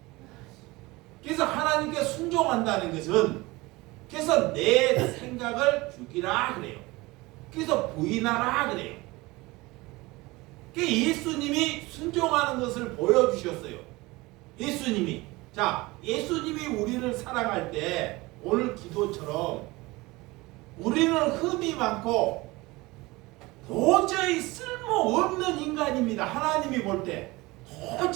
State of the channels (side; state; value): left; quieter; 21.8 dB